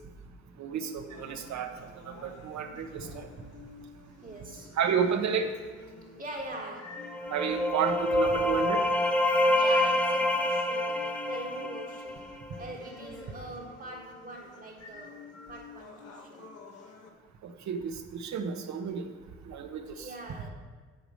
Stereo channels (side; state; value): both; normal; correlation 0.51